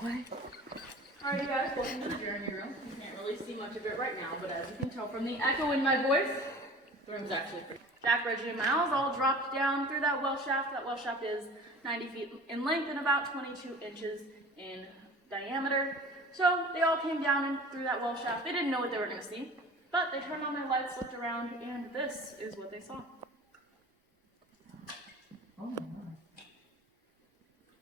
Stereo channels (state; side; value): normal; both; correlation 0.42